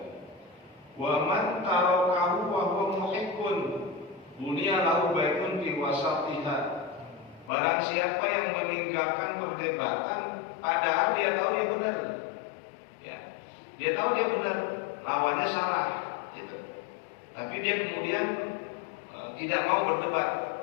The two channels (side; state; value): right; drops out; at 7.5 s